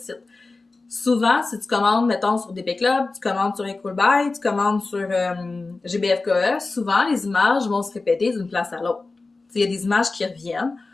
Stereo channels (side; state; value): right; quieter; 3.6 dB